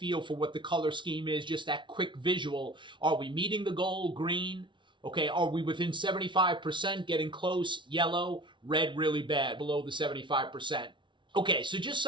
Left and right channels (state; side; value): late; left; 0.24 ms